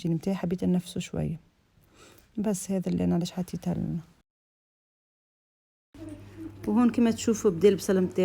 نتاعي، حبيت نفسه شويه. بس هذا اللي انا علاش حطيتها لنا. وهون كما تشوفوا بدا البصل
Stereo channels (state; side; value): identical; both; correlation 1.00